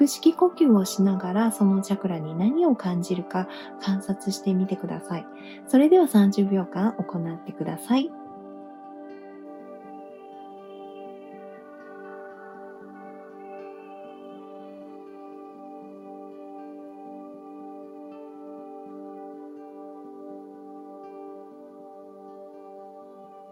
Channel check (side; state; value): both; identical; correlation 1.00